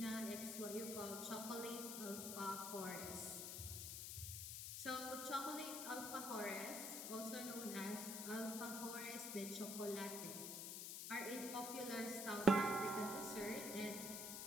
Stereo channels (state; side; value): noise; left; hiss, 4 dB below the sound